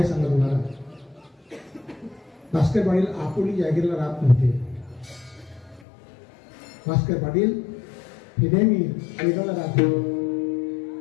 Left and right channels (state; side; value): drops out; right; at 5.9 s